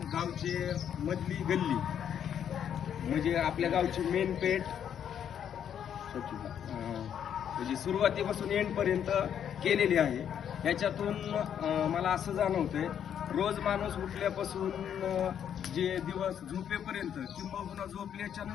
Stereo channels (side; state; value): right; quieter; 9.0 dB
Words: गावची मधली गल्ली म्हणजे आपल्या गावची मेन पेठ म्हणजे सुरुवातीपासून एंडपर्यंत केलेली आहे. याच्यातून मला असं जाणवतंय, रोज माणूस उठल्यापासून जे दिवस झोपेपर्यंत किंबहुना झोपल्याच्या